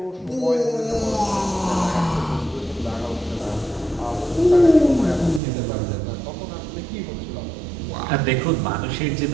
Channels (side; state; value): left; drops out; at 5.4 s